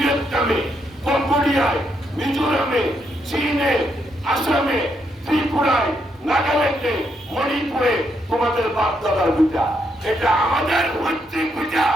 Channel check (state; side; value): normal; both; correlation 0.78